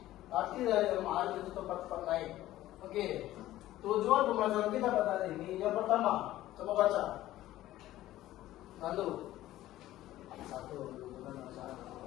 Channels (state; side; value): quieter; right; 14.8 dB